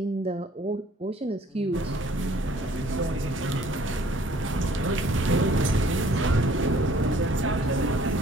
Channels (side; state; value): both; normal; correlation 0.57